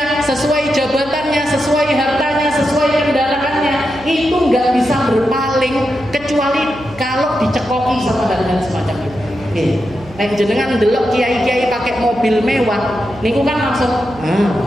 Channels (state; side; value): noise; right; hum, 20 dB below the sound